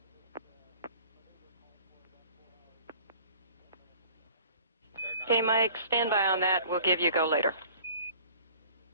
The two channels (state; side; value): inverted; both; correlation -0.48